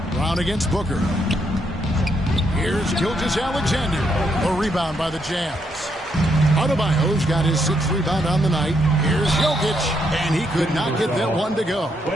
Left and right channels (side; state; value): both; normal; correlation 0.76